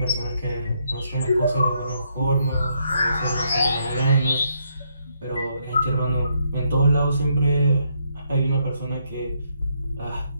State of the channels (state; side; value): inverted; both; correlation -0.75